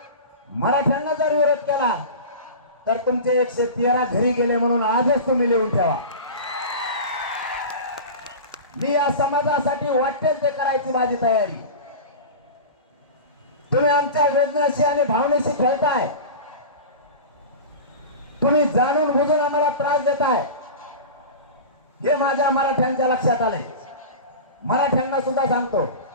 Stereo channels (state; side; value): inverted; both; correlation -0.30